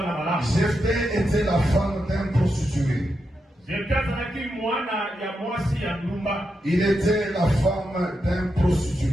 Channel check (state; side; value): normal; both; correlation 0.85